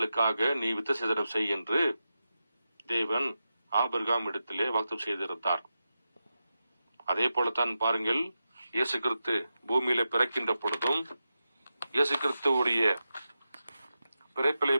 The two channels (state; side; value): inverted; both; correlation -0.90